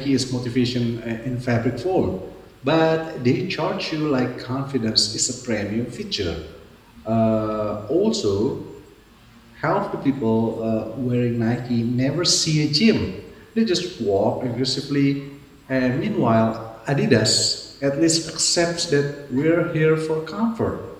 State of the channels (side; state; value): both; identical; correlation 1.00